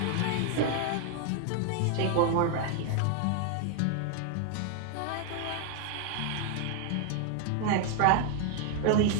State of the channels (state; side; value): different; both; correlation 0.00